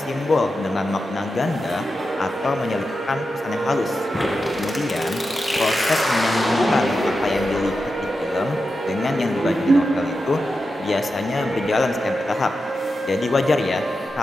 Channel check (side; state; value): both; normal; correlation 0.90